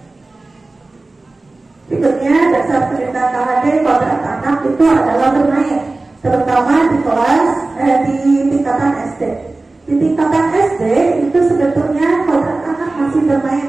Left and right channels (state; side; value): quieter; left; 3.2 dB